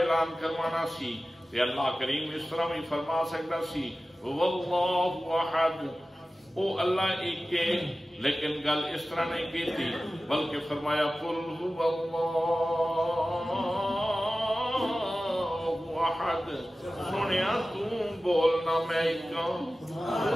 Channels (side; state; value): both; normal; correlation 0.95